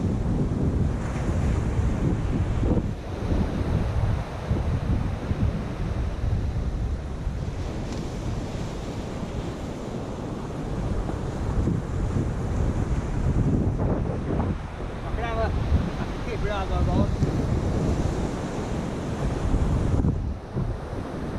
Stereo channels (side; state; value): both; identical; correlation 1.00